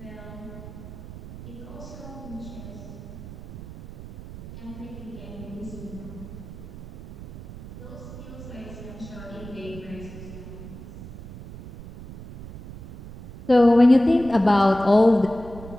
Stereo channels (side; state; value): right; noise; rumble, 14 dB below the sound